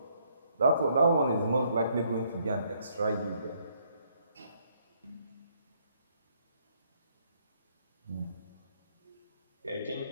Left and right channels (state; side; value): inverted; both; correlation -0.69